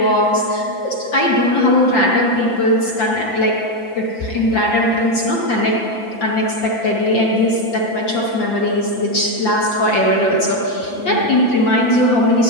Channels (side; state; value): right; late; 6.0 ms